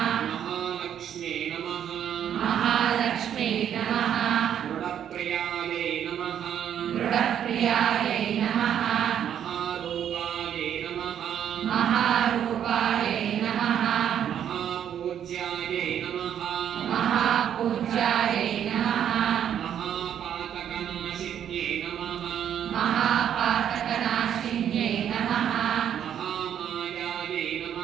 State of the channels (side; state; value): left; quieter; 9.5 dB